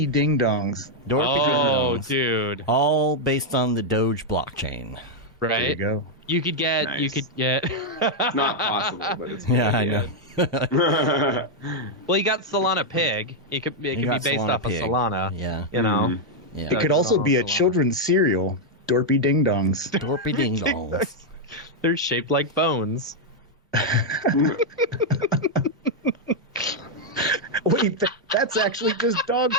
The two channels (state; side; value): normal; both; correlation -0.01